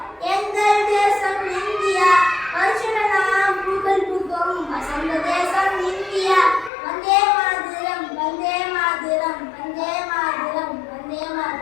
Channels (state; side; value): drops out; right; at 6.7 s